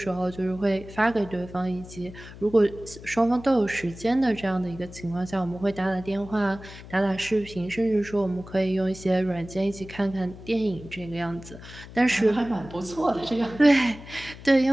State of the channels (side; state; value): left; noise; hum, 16 dB below the sound